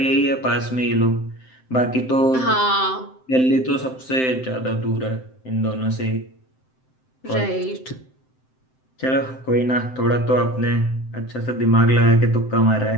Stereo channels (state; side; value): late; right; 7.7 ms